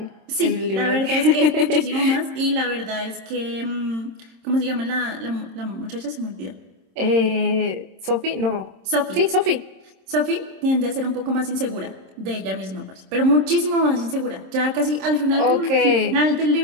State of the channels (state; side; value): late; left; 26 ms